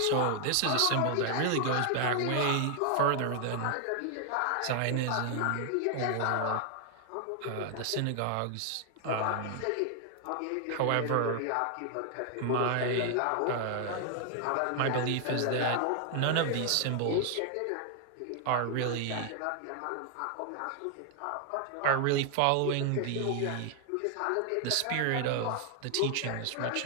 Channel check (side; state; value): both; different; correlation 0.00